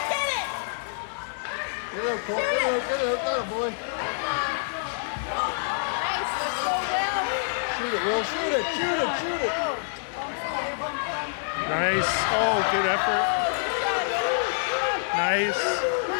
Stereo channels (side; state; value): right; silent; digital silence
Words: Get it. Get it, Cole. Get it, boy. Nice. Let's go, Will. Shoot it, Will. Shoot it. Nice. Oh, good effort. Nice.